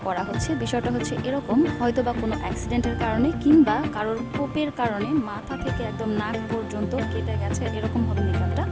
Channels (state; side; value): identical; both; correlation 1.00